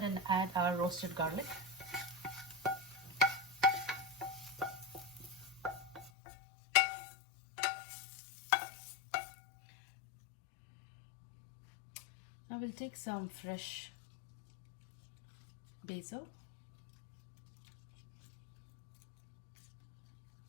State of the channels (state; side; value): drops out; right; at 6.1 s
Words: and add our roasted garlic. Now we'll take some fresh basil.